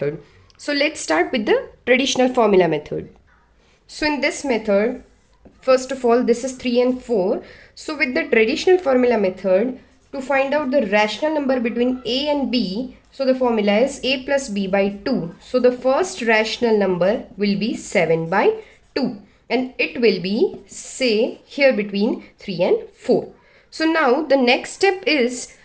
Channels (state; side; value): identical; both; correlation 1.00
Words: So let's start with the traditional formula method. So in this method, first of all this is 3 and 4. So with the traditional formula method, to find out the rational number between A and B, so the formula is A plus B by 2. So the first rational number will be 7 by 2 and it will be, say, here between 3 and 4. So now the next step is